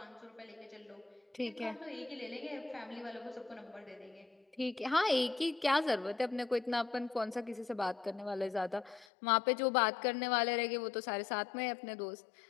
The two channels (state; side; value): drops out; right; at 9.1 s